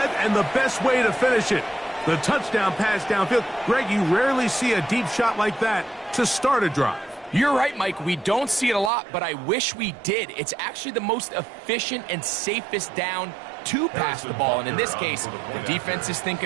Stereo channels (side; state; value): left; drops out; at 8.9 s